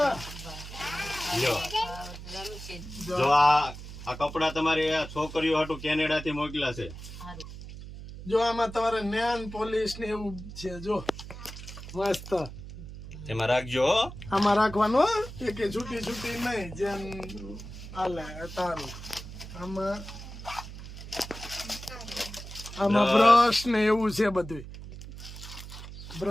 લ્યો, રમશે જો આ કપડા તમારી આ છોકરીઓ હાટું કેનેડા થી મોકલ્યા છે. સારું. જો આમાં તમારે નેન પોલીસ ને એવું છે. જો મસ્ત એમાં રાખજો હો. આમાં રાખવાનું હો. કે છૂટી છૂટી નહીં જેમ હાલે તારું. આમાં બ્રશ ને એવું છે બધું.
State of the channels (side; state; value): right; noise; hum, 12 dB below the sound